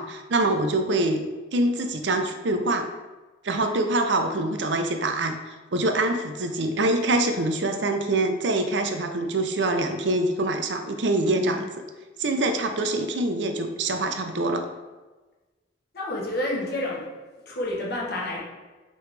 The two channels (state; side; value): normal; both; correlation 0.18